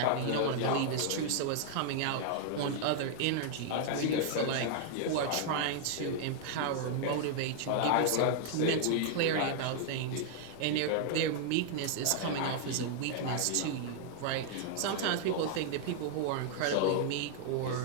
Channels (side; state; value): both; different; correlation 0.00